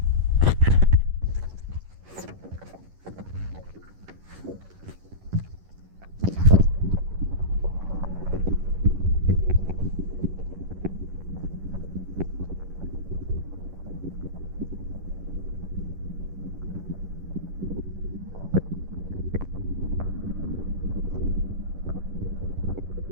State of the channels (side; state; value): left; late; 11 ms